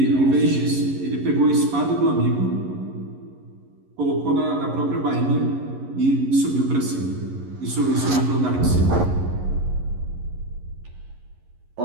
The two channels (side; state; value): left; late; 11 ms